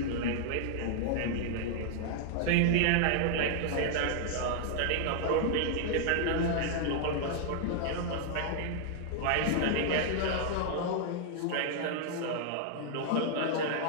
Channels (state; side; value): different; both; correlation 0.00